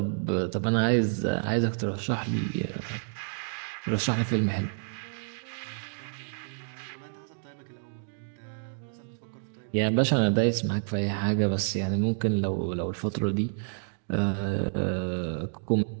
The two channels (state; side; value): silent; left; digital silence